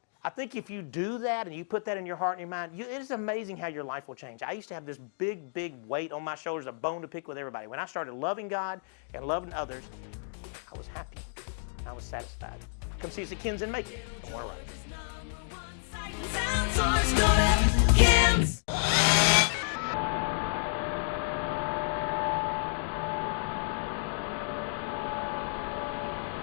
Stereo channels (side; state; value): right; silent; digital silence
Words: I think if you do that and you put that in your heart and your mind, it is amazing how your life will change. I used to have this big, big weight on my shoulders, a bone to pick with everybody. When I started loving God and loving others, I was happy. I was satisfied. Come see us at Ken's in Macon in Warner Robins.